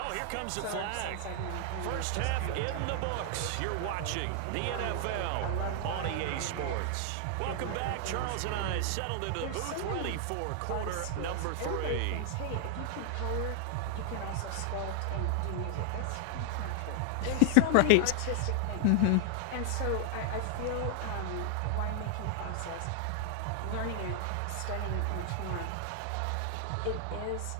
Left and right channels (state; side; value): different; both; correlation 0.00